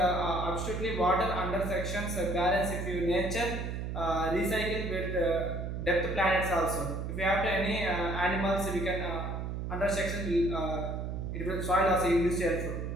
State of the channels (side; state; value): right; noise; hum, 4 dB below the sound